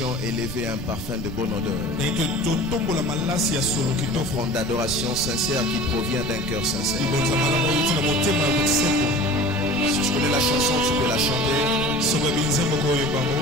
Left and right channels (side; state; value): right; noise; rumble, 9 dB below the sound